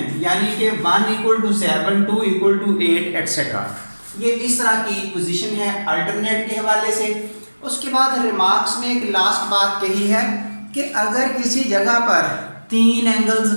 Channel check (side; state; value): both; inverted; correlation -1.00